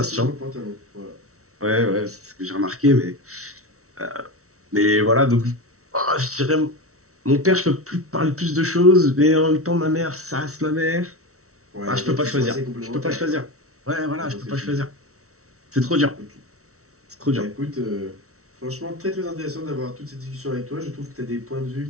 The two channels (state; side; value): late; left; 0.64 ms